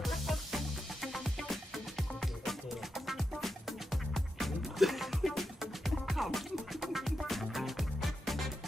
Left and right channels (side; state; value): both; normal; correlation 0.87